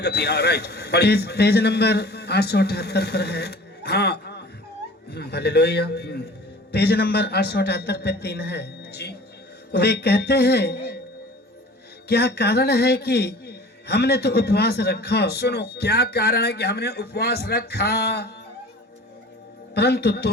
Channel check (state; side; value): normal; both; correlation 0.44